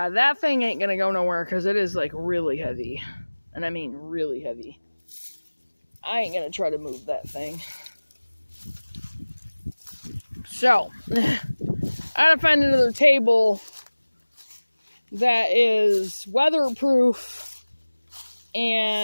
that thing ain't gonna go nowhere because it is like really heavy. And I mean really heavy. I ain't gonna try to move that thing. So, I gotta find another table that is weatherproof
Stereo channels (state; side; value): inverted; both; correlation -1.00